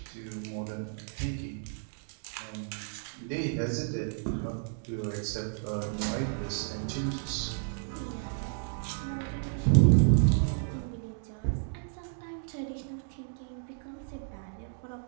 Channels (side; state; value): left; silent; digital silence